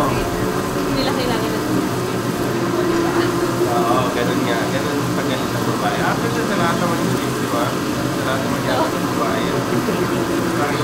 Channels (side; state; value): both; identical; correlation 1.00